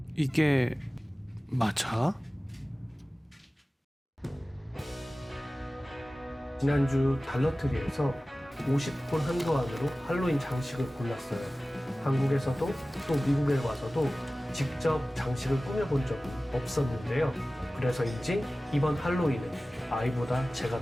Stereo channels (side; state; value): both; normal; correlation 0.97